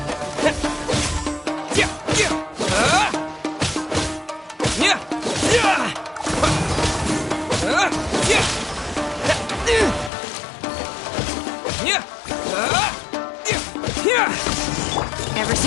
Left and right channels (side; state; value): right; drops out; at 10.1 s